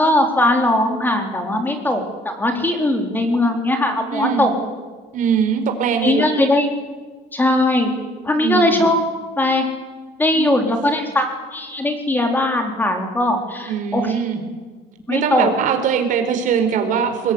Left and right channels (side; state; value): both; normal; correlation 0.57